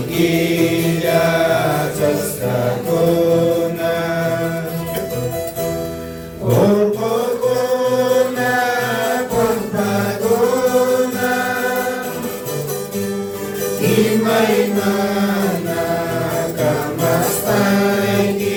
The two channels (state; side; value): identical; both; correlation 1.00